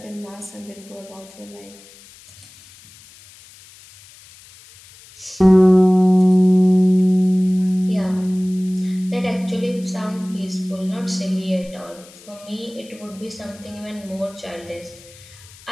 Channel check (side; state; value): left; noise; hiss, 23 dB below the sound